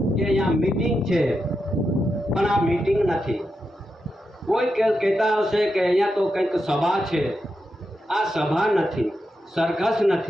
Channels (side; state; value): both; normal; correlation 0.86